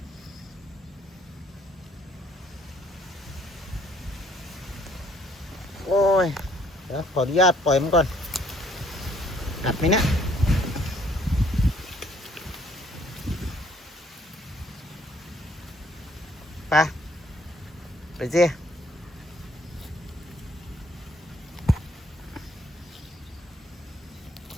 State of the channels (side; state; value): both; normal; correlation 0.63